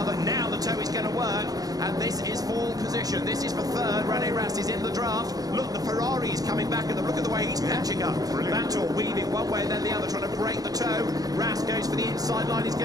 Now the toe is going to work, and this is pole position. This is for third. Rene Rast is in the draft. Look, the Ferrari is coming back, and look at the way he's catching up. Vanthoor weaving one way and then the other, trying to break the toe. Rast goes for the inside line. He's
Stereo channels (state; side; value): late; left; 0.18 ms